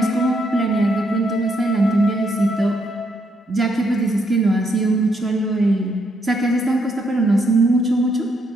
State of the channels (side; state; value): both; normal; correlation 0.75